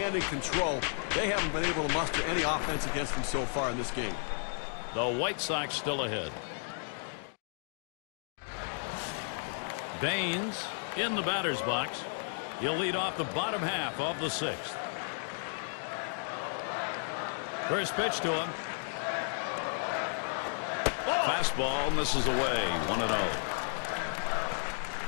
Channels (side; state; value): right; silent; digital silence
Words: and control. They haven't been able to muster any offense against him so far in this game. The White Sox still ahead. Baines in the batter's box. He'll lead off the bottom half of the 6th. First pitch to him. Fastball misses away. 1-0.